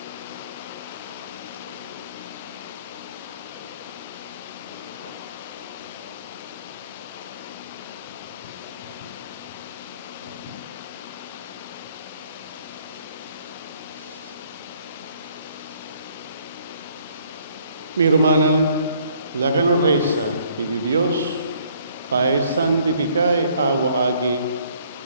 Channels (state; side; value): inverted; both; correlation -0.62